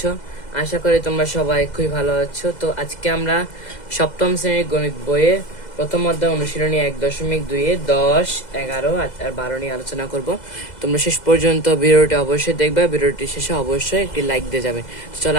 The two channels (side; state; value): right; late; 2.0 ms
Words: আশা করি তোমরা সবাই খুবই ভালো আছো। তো আজকে আমরা সপ্তম শ্রেণীর গণিত বইয়ে প্রথম অধ্যায় অনুশীলনী 1.2 10, 11 আর 12 নিয়ে আলোচনা করব। তোমরা শেষ পর্যন্ত ভিডিওটি অবশ্যই দেখবে। ভিডিওটি শেষে অবশ্যই একটি লাইক দিয়ে যাবে। তো চলো